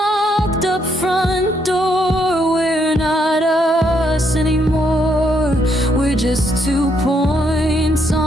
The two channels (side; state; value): both; normal; correlation 0.74